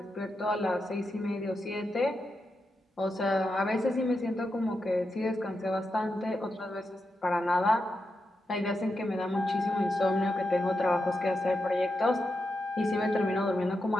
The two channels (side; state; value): both; normal; correlation 0.87